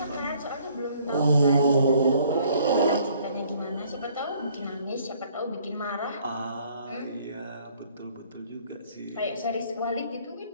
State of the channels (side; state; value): both; inverted; correlation -0.60